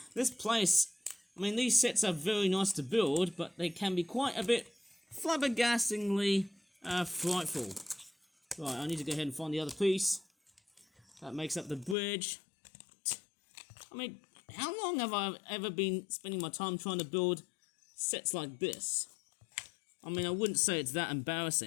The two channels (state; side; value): drops out; right; at 12.0 s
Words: This place, I mean, these sets are very nice to build, but they can be quite a bit flabbergastingly frightful. Right, I need to go ahead and find the other piece. That makes up the bridge. I mean, how long have I ever been spending my time trying to build sets like this? I mean, I wouldn't say it's that